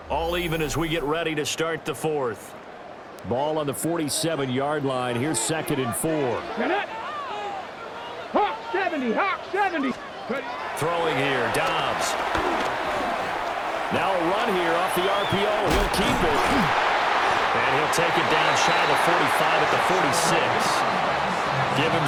All even as we get ready to start the fourth. Ball on the 47-yard line. Here's 2nd and 4. Hawk 70, Hawk 70. Throwing here, Dobbs. Now a run here off the RPO. He'll keep it. And he'll take it down shy of the 45 at the 46. Give him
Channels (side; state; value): both; identical; correlation 1.00